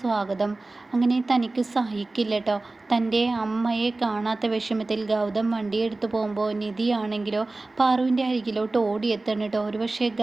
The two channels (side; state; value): left; quieter; 3.1 dB